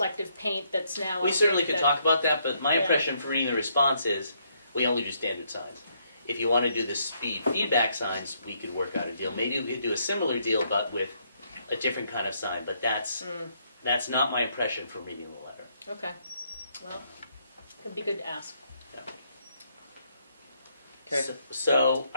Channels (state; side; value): inverted; both; correlation -0.73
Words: paint that's now. We I certainly think could that- talk about that, but my Yeah. impression from reading the response is we only do standard signs. If you want to do the speed feedback signs, we could work out a deal. Maybe we could do a similar deal, but with a different kind of sign. But that's not my impression from reading the letter. Okay, well, could be good to ask. Okay. So